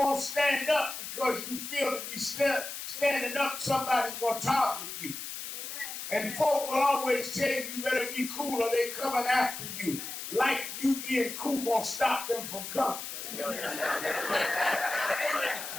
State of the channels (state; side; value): noise; left; hiss, 7 dB below the sound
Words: stand up because you feel to be standing up, somebody's going to target you. And folk will always tell you, you better be cool or they're coming after you. Like you being cool going to stop them from coming.